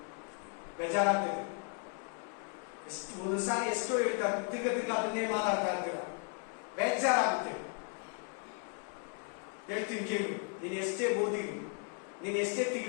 ಬೇಜಾರಾಗ್ತದೆ. ಎಷ್ಟು ಒಂದೊಂದ್ಸಾರಿ ಎಷ್ಟೋ ಹೇಳ್ತಾರೆ, ತಿರ್ಗ ಅದನ್ನೇ ಮಾತಾಡ್ತಾ ಇರ್ತೀರ, ಬೇಜಾರಾಗುತ್ತೆ. ಹೇಳ್ತೀನಿ ಕೇಳು, ನೀನು ಎಷ್ಟೇ ಓದಿರು, ನೀನು ಎಷ್ಟೇ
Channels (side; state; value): right; quieter; 37.5 dB